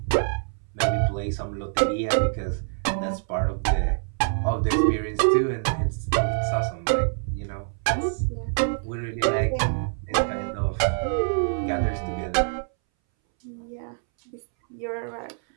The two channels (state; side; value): silent; left; 61 dB below the other